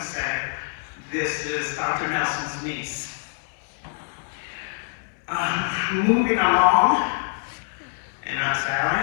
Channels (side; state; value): right; silent; digital silence